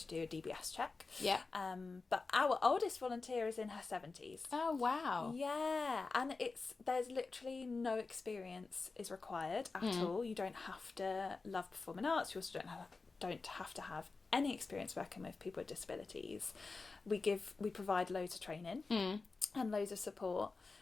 do a DBS check. Yeah. But our oldest volunteer is in her 70s. Oh, wow. Yeah. And there's literally no experience is required at all. You don't have to love performing arts. You also don't have to have any experience working with people with disabilities. We provide loads of training and loads of support.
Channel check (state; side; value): quieter; right; 4.0 dB